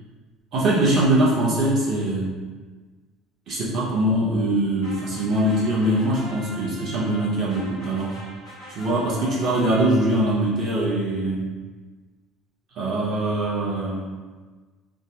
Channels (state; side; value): normal; both; correlation 0.34